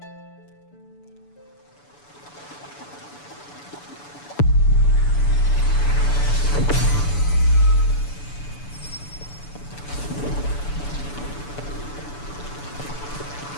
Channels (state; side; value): late; right; 6.9 ms